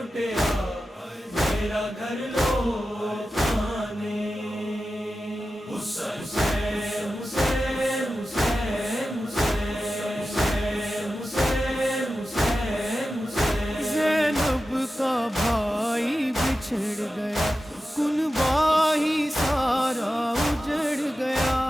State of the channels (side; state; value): both; normal; correlation 0.93